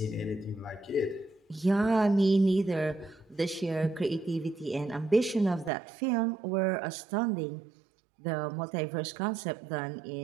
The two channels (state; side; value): drops out; left; at 5.7 s